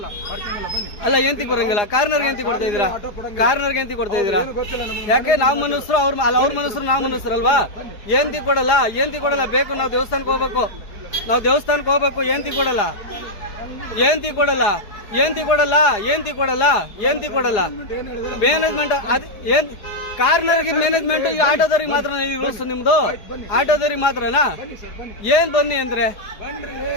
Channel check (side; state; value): right; late; 4.8 ms